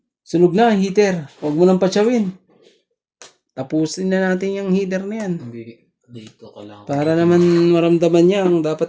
Sunog na ang heater. Huwag mo nang patsawin. Tapusin na natin yung heater na yan. Hindi, dito ka lang. Para naman maramdaman niya ang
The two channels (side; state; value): both; identical; correlation 1.00